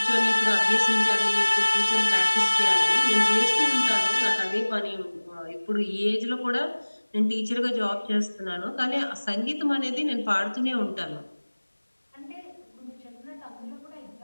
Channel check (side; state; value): both; inverted; correlation -1.00